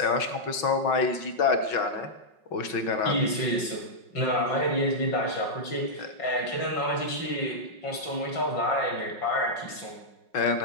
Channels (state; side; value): late; right; 5.4 ms